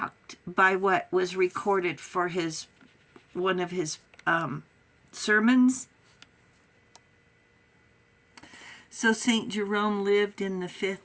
by what was recorded for one of his sermons. So St. Jerome lived in the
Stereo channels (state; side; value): identical; both; correlation 1.00